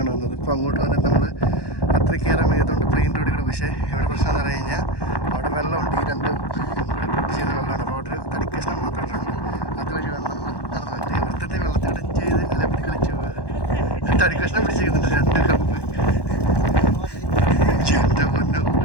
വന്നത്. ഇപ്പം അങ്ങോട്ട് വന്നിട്ട് നമ്മൾ അത്ര കയറാൻ വയ്യതുകൊണ്ട് പ്ലെയിൻ റോഡിൽ കൂടെ. പക്ഷേ ഇവിടെ പ്രശ്നം എന്ന് പറഞ്ഞു കഴിഞ്ഞാൽ അവിടെ വെള്ളമുണ്ട്, ഈ രണ്ട് കൂടെ കൂട്ടി ചെയ്യുന്ന വെള്ളമാണ്. അപ്പോൾ അവിടെ ഒരു തടിക്കഷ്ണം മാത്രമായിട്ടുണ്ട്. അതുവഴി വെള്ളം നടന്നു പറ്റും. ഇവിടുത്തെ വെള്ളത്തിൽ കൂടെ ചെയ്ത് അലപ്പി കളിച്ച് പോവുക. തടിക്കഷ്ണം പിടിച്ചിരിക്കുന്നുണ്ട്, 2 കപ്പ്. എൻ്റെ പൊന്നോ,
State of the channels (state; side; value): late; right; 1.1 ms